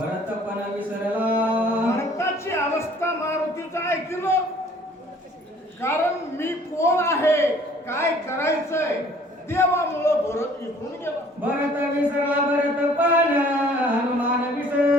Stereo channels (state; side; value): normal; both; correlation 0.55